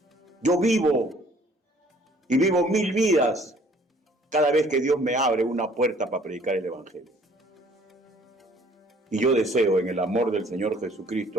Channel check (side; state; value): both; normal; correlation 0.57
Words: Yo vivo 1000 vidas cada vez que Dios me abre una puerta para predicar el Evangelio. Y yo deseo en el amor del Señor